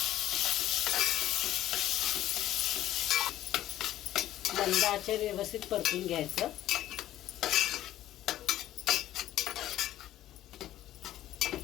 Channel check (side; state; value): right; quieter; 13.5 dB